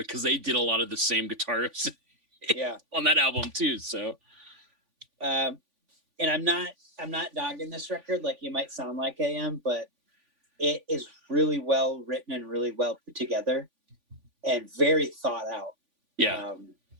they did a lot of the same guitar riffs Yeah. on that album too. So and I'm not dogging this record like you might sound like I am, but it is really well written and really well put together and very thought out. yeah.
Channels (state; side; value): late; left; 3.5 ms